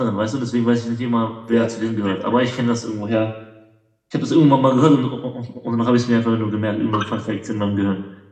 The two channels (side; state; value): both; identical; correlation 1.00